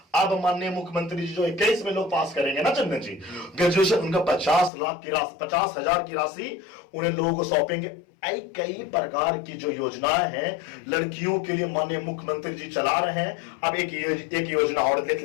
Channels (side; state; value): right; drops out; at 4.7 s